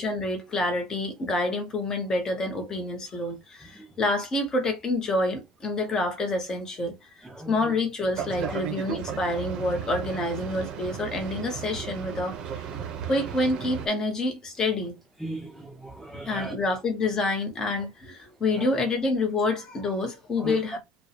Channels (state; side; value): normal; both; correlation 0.54